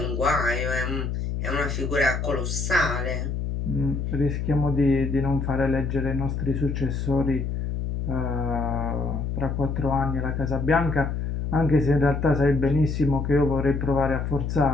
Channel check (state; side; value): noise; left; hum, 2 dB below the sound